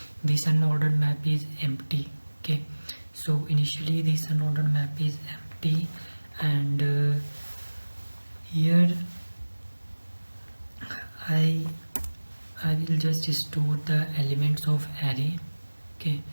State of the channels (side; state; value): both; inverted; correlation -1.00